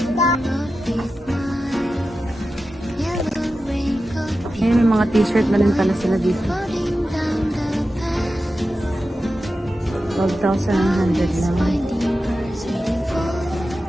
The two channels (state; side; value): normal; both; correlation 0.92